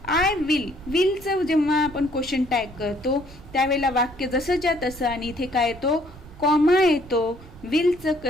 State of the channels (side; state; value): right; noise; rumble, 20 dB below the sound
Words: आय विल, विलचं जेव्हा आपण क्वेश्चन टॅग करतो त्यावेळेला वाक्य जसंच्या तसं आणि इथे काय येतो? कॉमा येतो. विलचं